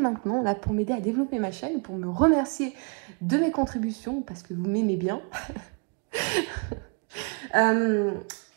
là pour m'aider à développer ma chaîne, pour me remercier de mes contributions, parce que vous m'aimez bien.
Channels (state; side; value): quieter; left; 35.9 dB